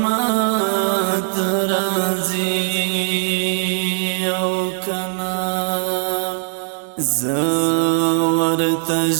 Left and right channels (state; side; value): silent; left; 66 dB below the other